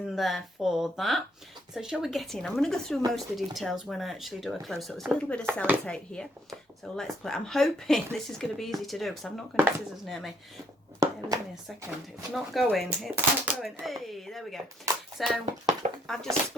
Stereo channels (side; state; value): both; normal; correlation 0.67